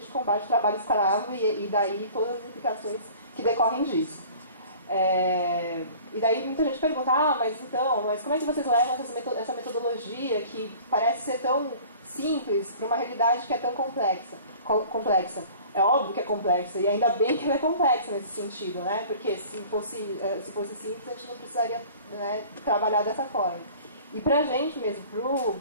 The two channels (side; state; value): both; inverted; correlation -0.46